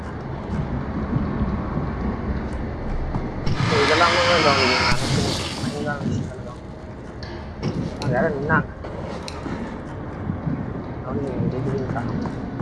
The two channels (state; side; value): identical; both; correlation 1.00